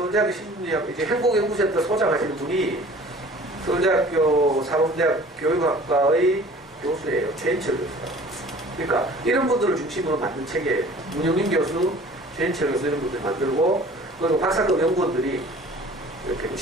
심리학, 이제 행복연구센터 소장하시는 분이 서울대학교 사범대학 교육학과의 교수예요. 최인철 교수가. 그러니까 이런 분들을 중심으로 만든 책이에요. 문영민 교수, 최인철 교수 이런 분들 만들고, 그리고 박사급 연구원들이 이렇게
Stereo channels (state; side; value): normal; both; correlation 0.47